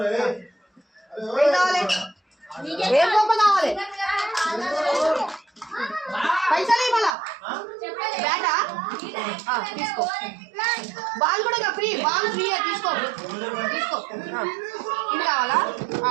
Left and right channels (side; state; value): left; drops out; at 7.2 s